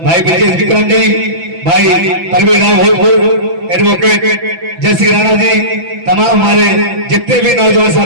भाई ब्रजेश विक्रम जी, भाई परवीन राव एडवोकेट जयश्री राणा जी, तमाम हमारे जितने भी नौजवान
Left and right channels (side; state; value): left; late; 6.0 ms